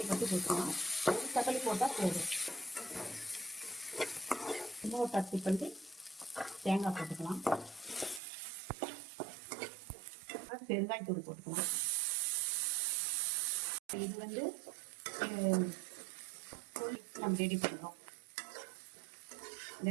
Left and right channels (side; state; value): left; drops out; at 8.2 s